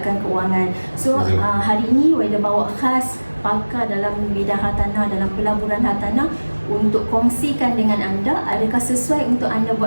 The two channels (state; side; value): inverted; both; correlation -1.00